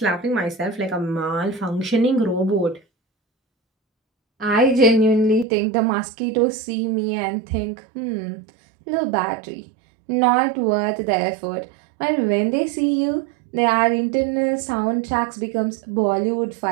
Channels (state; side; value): drops out; left; at 5.5 s